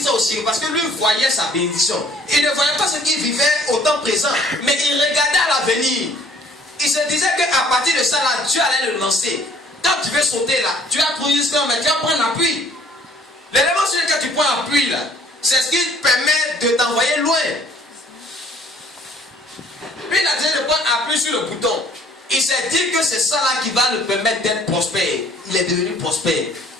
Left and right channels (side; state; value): both; normal; correlation 0.57